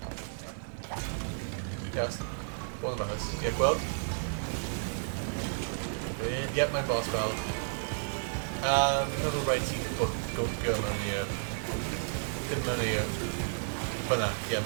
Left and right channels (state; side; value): silent; left; digital silence